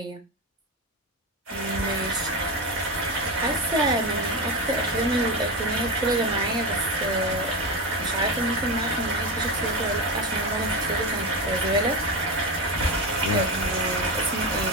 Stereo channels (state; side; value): normal; both; correlation 0.17